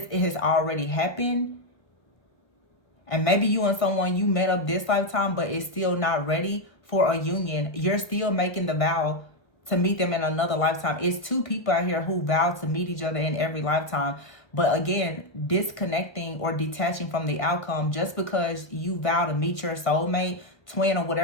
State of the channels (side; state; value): right; late; 1.5 ms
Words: has already happened. And maybe you and someone you met up this lifetime, but it's still not ready for a union. You're still making the vow to meet them in another lifetime. It's two people out here who vow to meet each other in every lifetime. But again, disconnecting or detaching from the outcome just because you vow to meet your soulmate, twin, or